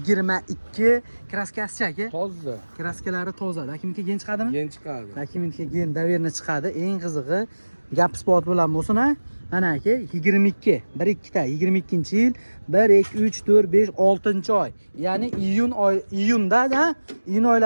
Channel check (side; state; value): both; inverted; correlation -1.00